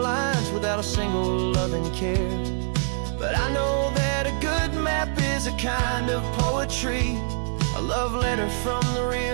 lines without a single loving care. But I know that a good map is a kind of poetry, a love letter from the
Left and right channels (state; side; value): silent; left; 62 dB below the other